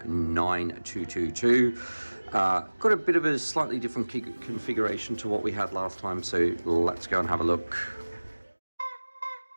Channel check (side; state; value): both; inverted; correlation -1.00